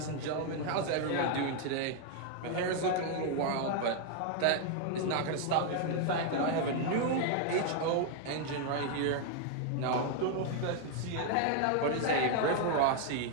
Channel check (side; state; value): both; different; correlation 0.00